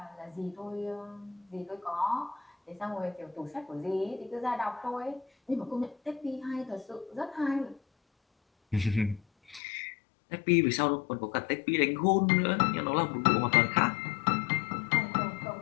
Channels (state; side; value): drops out; right; at 9.6 s